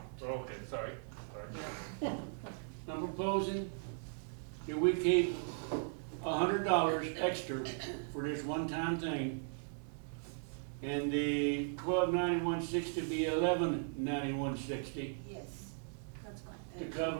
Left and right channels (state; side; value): silent; left; digital silence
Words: okay, sorry. I'm proposing that we keep $100 extra for this one-time thing, and the 129160 be 119160 Yes, that's fine. to